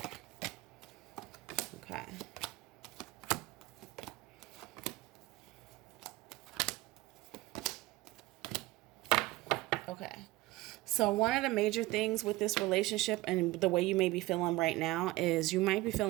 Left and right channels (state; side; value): quieter; left; 19.4 dB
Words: Okay. Okay. So one of the major things with this relationship and the way you may be feeling right now is you might be